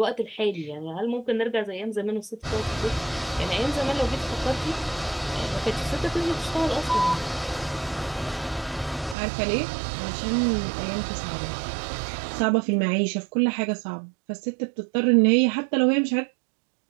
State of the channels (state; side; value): drops out; left; at 9.2 s